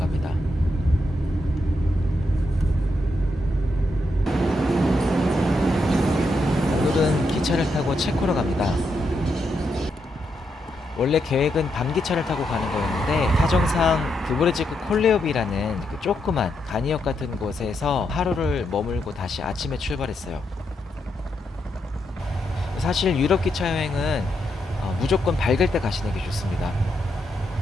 오늘은 기차를 타고 체코로 갑니다. 원래 계획은 밤기차를 타고 가는 거였는데 사정상 드브레지크 콜레오비라는 그 조그만 간이역 같은 곳에서 하루를 머물고 다시 아침에 출발했어요. 사실 유럽 기차 여행은 무조건 밝을 때 가시는 게 좋습니다.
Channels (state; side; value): normal; both; correlation 0.81